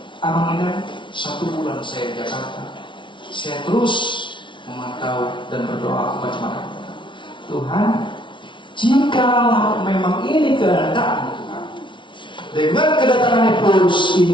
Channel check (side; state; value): right; late; 0.24 ms